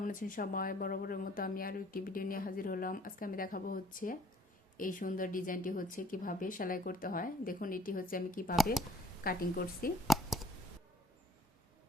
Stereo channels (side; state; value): both; normal; correlation 0.58